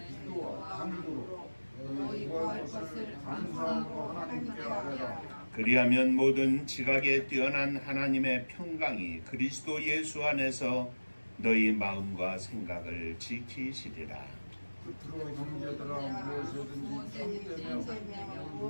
기도와 간구로 너희 구할 것을 감사함으로 하나님께 아뢰라. 그리하면 모든 지각에 뛰어난 하나님의 평강이 그리스도 예수 안에서 너희 마음과 생각을 지키시리라. 끝으로 형제들아 무엇이든지 참되며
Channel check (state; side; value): inverted; both; correlation -1.00